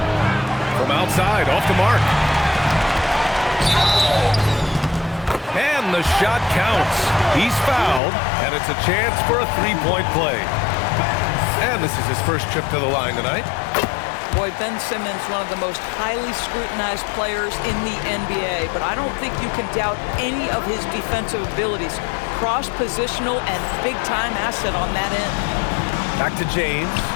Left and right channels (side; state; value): right; drops out; at 8.0 s